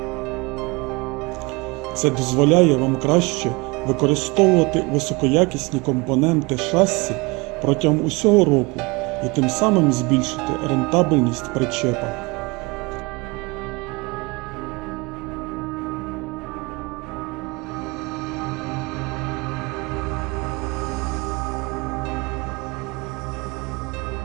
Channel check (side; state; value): left; quieter; 25.9 dB